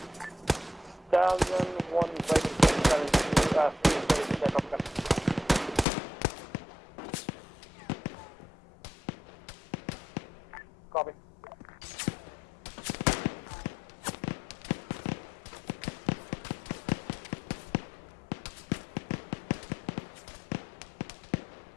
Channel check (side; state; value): right; drops out; at 5.9 s